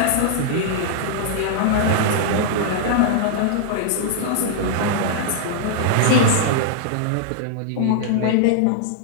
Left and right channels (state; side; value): different; both; correlation -0.01